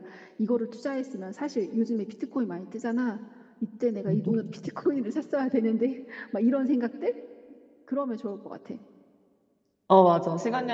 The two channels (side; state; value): both; identical; correlation 1.00